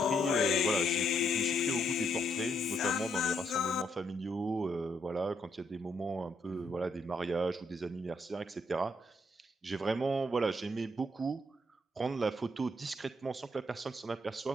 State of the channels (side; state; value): both; normal; correlation 0.75